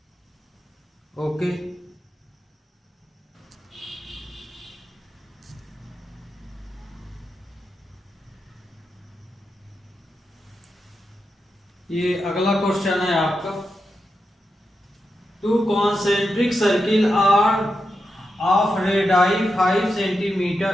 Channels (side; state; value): both; normal; correlation 0.87